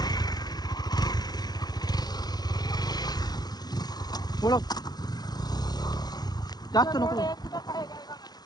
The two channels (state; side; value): late; right; 0.19 ms